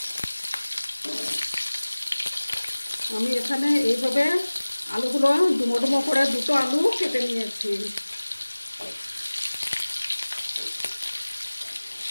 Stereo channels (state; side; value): inverted; both; correlation -1.00